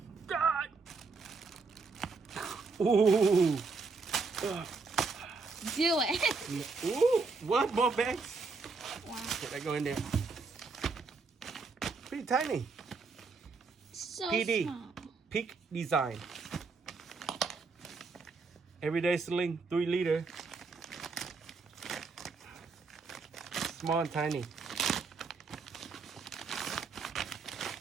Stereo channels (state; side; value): quieter; left; 4.4 dB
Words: God. Ooh. Do it. Ooh. What? More bags? Wow. Okay, I go in there. Pretty tiny. So PD. small. Peak Design. Everyday Sling, 3 liter. Small and tiny.